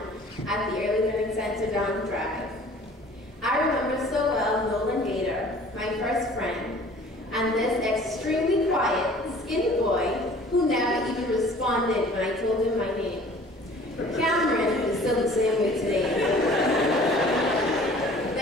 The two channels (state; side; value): normal; both; correlation 0.49